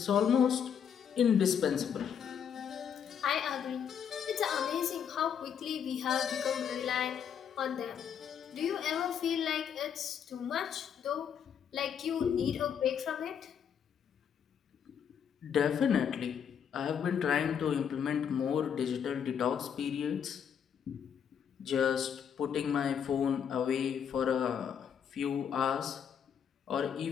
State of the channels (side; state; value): right; quieter; 8.0 dB